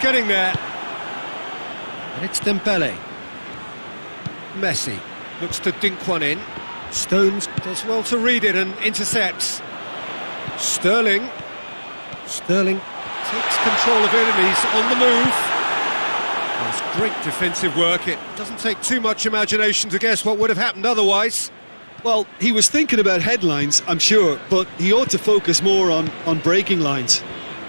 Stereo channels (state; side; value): inverted; both; correlation -1.00